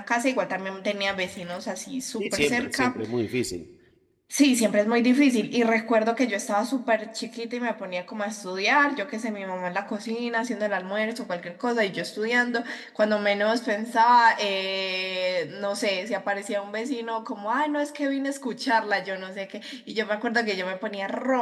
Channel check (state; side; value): identical; both; correlation 1.00